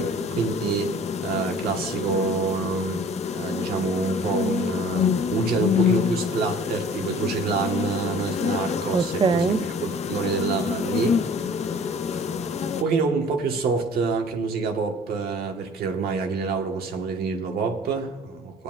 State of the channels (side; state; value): both; normal; correlation 0.49